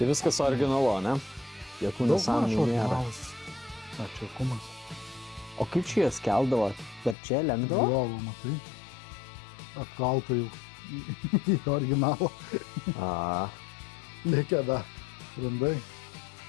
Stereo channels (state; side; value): drops out; right; at 7.2 s